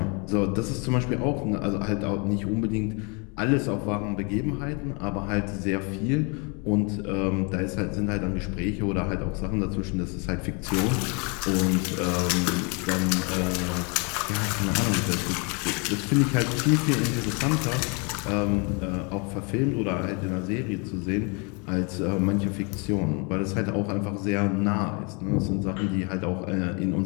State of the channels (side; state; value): right; quieter; 33.3 dB